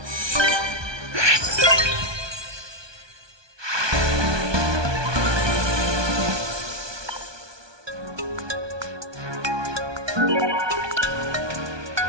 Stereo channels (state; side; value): late; left; 1.2 ms